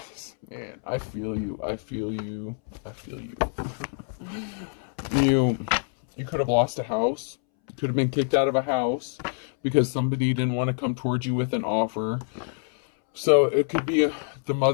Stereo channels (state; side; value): silent; right; 61 dB below the other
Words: Man, I feel you. I feel you. I feel you. You could have lost a house. You could have been kicked out of a house because somebody didn't want to come towards you with an offer. So it could be the